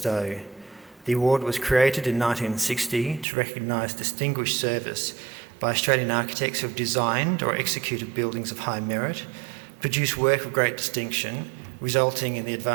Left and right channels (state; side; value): drops out; left; at 3.2 s